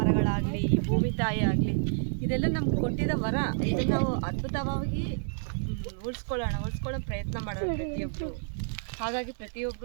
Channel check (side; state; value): left; silent; digital silence